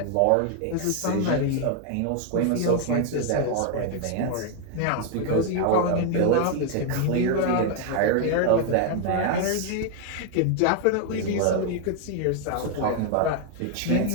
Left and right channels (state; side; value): different; both; correlation 0.00